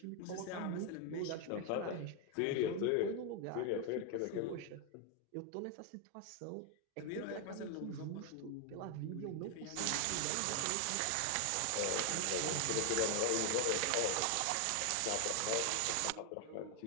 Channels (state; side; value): different; both; correlation 0.01